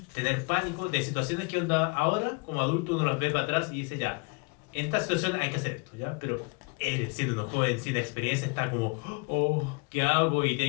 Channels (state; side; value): quieter; right; 31.2 dB